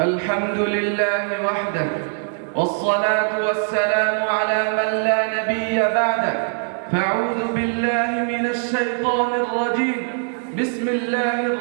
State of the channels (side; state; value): left; silent; 65 dB below the other